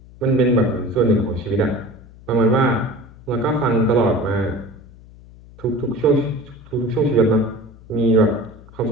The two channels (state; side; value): noise; left; hum, 21 dB below the sound